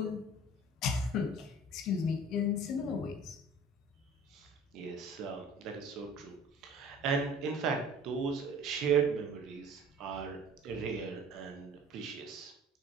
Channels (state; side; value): normal; both; correlation 0.46